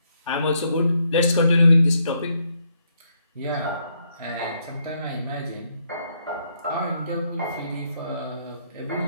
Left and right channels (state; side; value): inverted; both; correlation -0.74